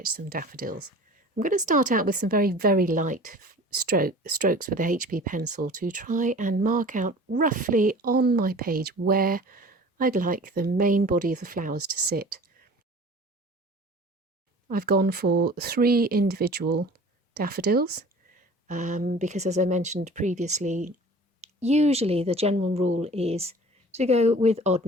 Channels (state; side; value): normal; both; correlation 0.44